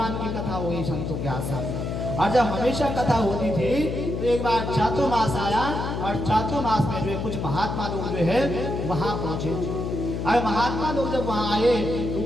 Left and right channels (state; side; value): noise; left; hum, 3 dB below the sound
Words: की कथा हुई संतों के आश्रम में, और जब हमेशा कथा होती थी तो एक बार चातुर्मास आया, और चातुर्मास में जो है कुछ महात्मा लोग जो है वहाँ पहुँचे, और महात्मा लोग जब वहाँ आए